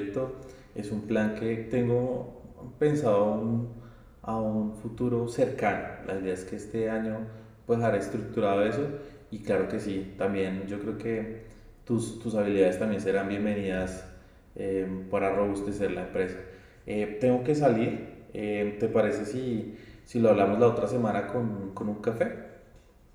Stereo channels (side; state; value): both; identical; correlation 1.00